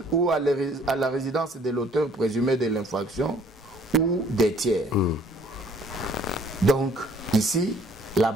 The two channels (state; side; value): normal; both; correlation 0.59